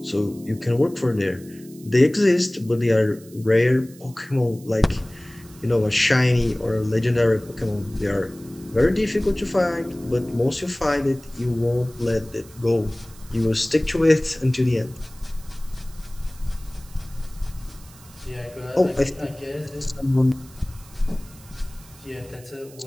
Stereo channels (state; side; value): noise; right; hiss, 23 dB below the sound